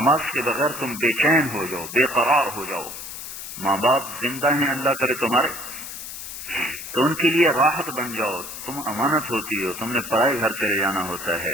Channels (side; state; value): left; noise; hiss, 10 dB below the sound